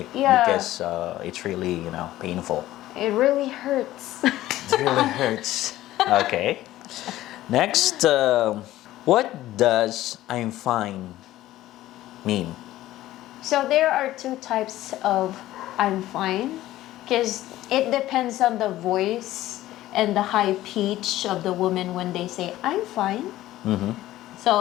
Yeah. Because it's really, painful. It really hurts. It really hurts. Okay. Next, what does "I'm fine" mean? So there are two types of "I'm fine," because it depends on the voice and the high pitch of the woman when they say "I'm fine."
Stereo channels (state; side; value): quieter; right; 15.1 dB